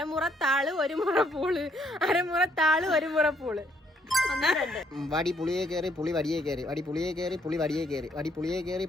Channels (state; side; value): normal; both; correlation 0.69